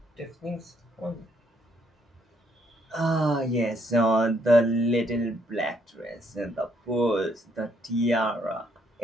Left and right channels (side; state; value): both; normal; correlation 0.71